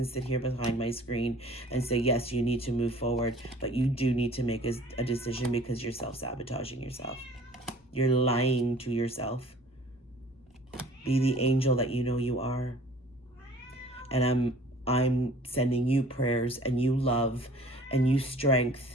sit here behind my screen and say, yes, you need to move forward, but you do need to make a decision because you're self-sabotaging yourself. You're lying to yourself. Be the angel that you know you are. And I'm sending you prayers and you love and you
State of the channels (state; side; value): normal; both; correlation 0.49